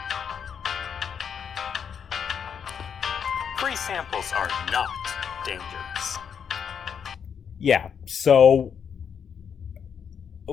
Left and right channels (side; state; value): right; quieter; 7.4 dB